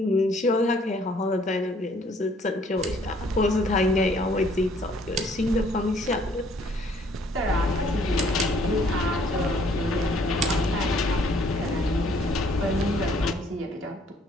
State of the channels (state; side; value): normal; both; correlation 0.62